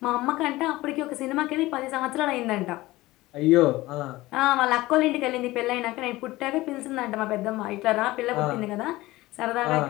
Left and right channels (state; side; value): quieter; right; 18.6 dB